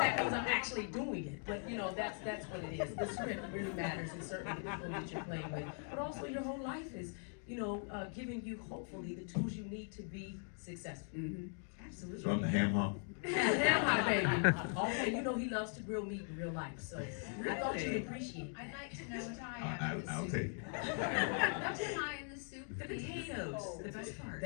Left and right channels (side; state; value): right; silent; 51 dB below the other